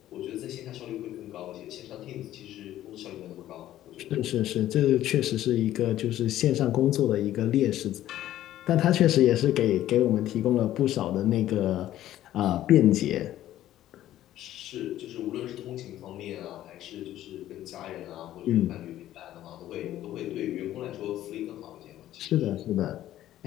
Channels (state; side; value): quieter; right; 13.2 dB